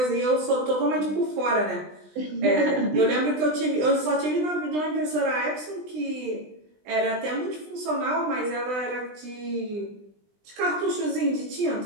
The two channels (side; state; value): left; late; 20 ms